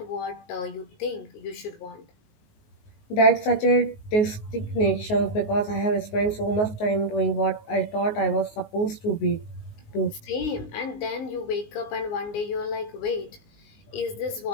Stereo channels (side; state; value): right; late; 19 ms